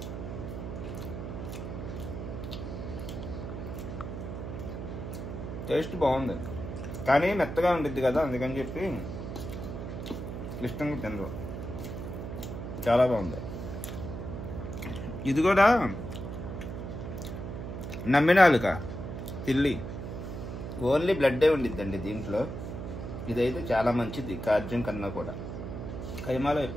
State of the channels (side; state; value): right; noise; hum, 7 dB below the sound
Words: టేస్ట్ బాగుంది కానీ మెత్తగా ఉండిద్ది కదా, అందుకని చెప్పి ఇష్టంగా తినరు. చాలా బాగుంది. ఇది కూడా నమ్మినాలుక తిల్లి ఓన్లీ బ్లడ్డే ఉండిద్దండి దీంట్లో. ఇదైతే చాలా మంచిది కార్జం కన్నా కూడా. కైమాలో